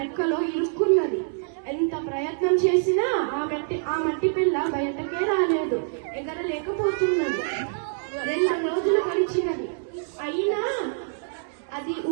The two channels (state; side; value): silent; left; 61 dB below the other